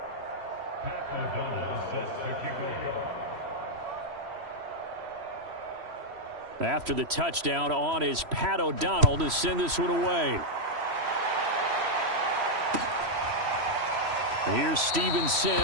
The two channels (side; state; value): left; late; 3.0 ms